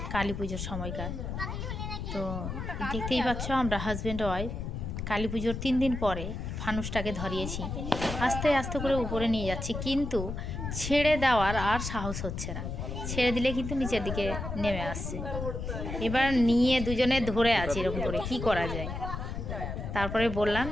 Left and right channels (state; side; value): noise; left; rumble, 5 dB below the sound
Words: কালী পুজোর সময়কার। তো দেখতেই পাচ্ছ আমরা হাজব্যান্ড ওয়াইফ কালী পুজোর 3 দিন পরে ফানুসটাকে ধরিয়েছি, আস্তে আস্তে করে উপরে নিয়ে যাচ্ছি, কিন্তু ছেড়ে দেওয়ার আর সাহস হচ্ছে না। ছেড়ে দিলে কিন্তু নিচের দিকে নেমে আসছে। এবার নিয়ে দুজনে ধরে আছি এরকম করে, কি করা যায়। তারপরে বললাম